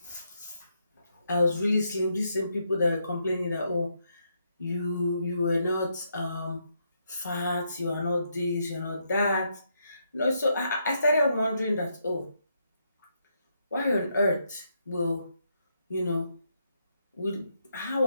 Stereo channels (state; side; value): inverted; both; correlation -0.78